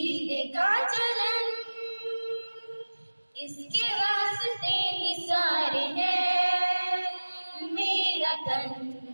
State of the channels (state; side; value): inverted; both; correlation -1.00